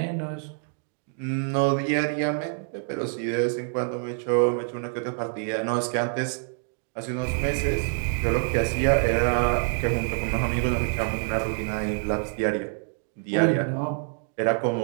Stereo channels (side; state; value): left; silent; 61 dB below the other